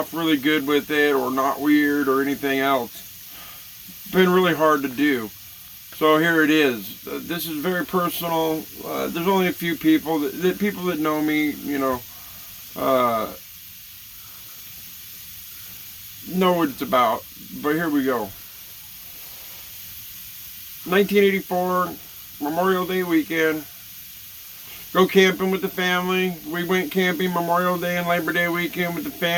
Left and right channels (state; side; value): identical; both; correlation 1.00